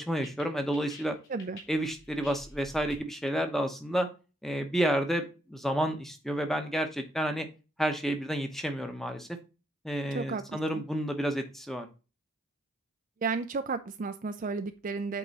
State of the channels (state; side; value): normal; both; correlation 0.74